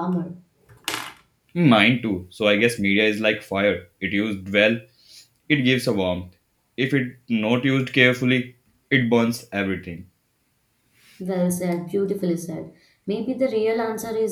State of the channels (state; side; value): identical; both; correlation 1.00